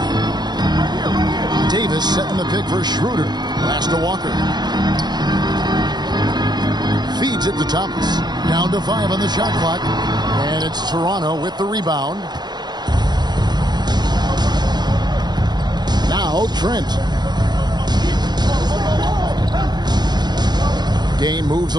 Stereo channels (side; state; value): left; late; 0.20 ms